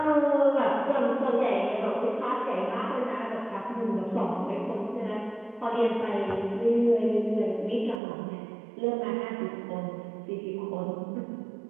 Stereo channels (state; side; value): drops out; left; at 8.0 s